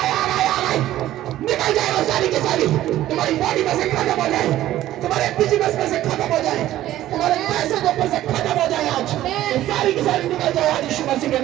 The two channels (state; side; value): quieter; left; 13.9 dB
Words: निकल जाए वो सारी की सारी, तुम्हारी बॉडी में से खत्म हो जाए, तुम्हारे बिजनेस में से खत्म हो जाए, तुम्हारे पैसे के ऊपर से खत्म हो जाए आज, तो सारी की सारी निकल जाए आज यीशु मसीह के